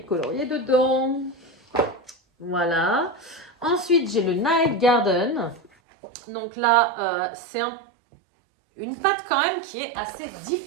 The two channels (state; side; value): drops out; left; at 5.7 s